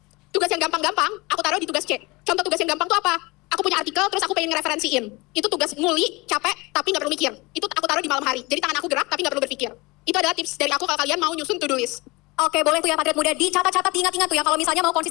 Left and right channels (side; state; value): right; quieter; 24.3 dB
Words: Tugas yang gampang-gampang aku taruh di tugas C. Contoh tugas yang gampang tuh apa? Aku punya artikel terus aku pengen ngereferensiin. Itu tugas nguli, capek, tapi nggak perlu mikir. Itu aku taruh di malam hari. Jadi tangan aku gerak tapi nggak perlu berpikir. Itu adalah tips dari aku kalau kalian mau nyusun to-do list. Oke, boleh tuh ya Patriot Muda dicatat-catat, diingat-ingat tuh ya kalau misalnya mau